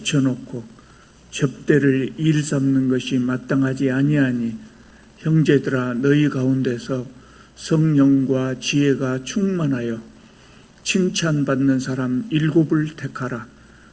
접대를 일삼는 것이 마땅하지 아니하니 형제들아 너희 가운데서 성령과 지혜가 충만하여 칭찬받는 사람 7을 택하라.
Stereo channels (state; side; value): identical; both; correlation 1.00